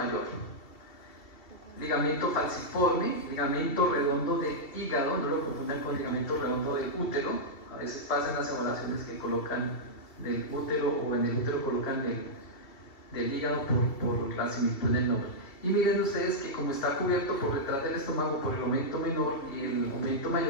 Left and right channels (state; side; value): late; right; 2.9 ms